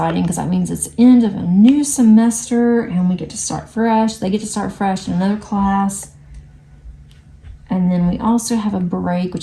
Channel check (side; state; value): both; identical; correlation 1.00